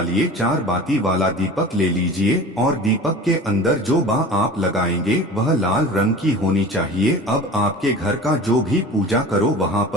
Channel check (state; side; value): normal; both; correlation 0.38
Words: 4 बाती वाला दीपक ले लीजिए और दीपक के अंदर जो बा आप लगाएंगे वह लाल रंग की होनी चाहिए। अब आपके घर का जो भी पूजा करो वहाँ